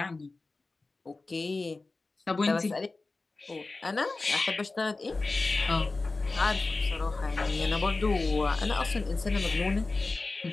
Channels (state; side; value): quieter; right; 3.5 dB